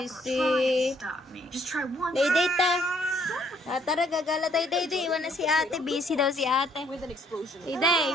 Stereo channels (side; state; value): both; normal; correlation 0.66